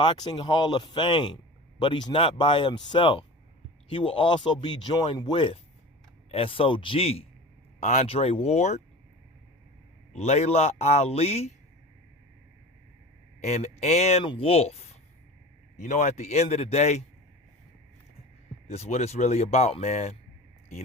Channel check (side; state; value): both; normal; correlation 0.35